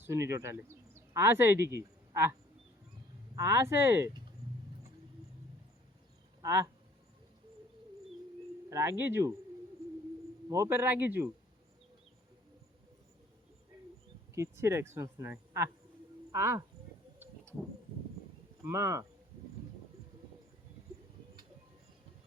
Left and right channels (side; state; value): both; normal; correlation 0.57